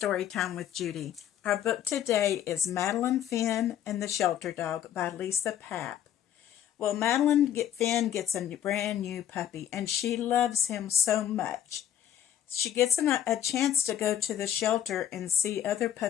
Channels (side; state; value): right; quieter; 10.6 dB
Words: with Judy. Our book today is Madeline, Finn, and the Shelter Dog by Lisa Papp. Well, Finn gets a brand new puppy, and she loves him so much. She gets a chance to go to the shelter and see other